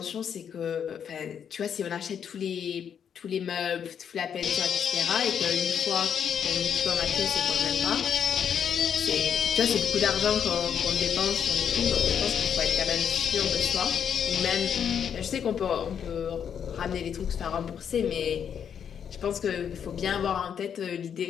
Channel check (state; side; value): quieter; right; 8.1 dB